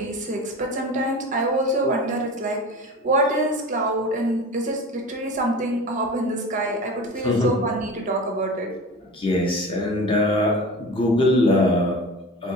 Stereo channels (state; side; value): normal; both; correlation 0.34